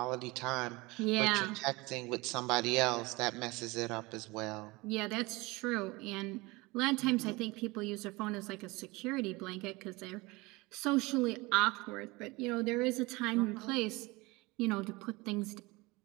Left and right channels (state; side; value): quieter; left; 23.3 dB